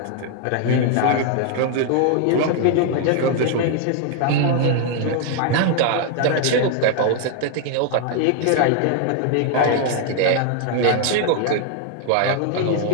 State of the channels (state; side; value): different; both; correlation 0.00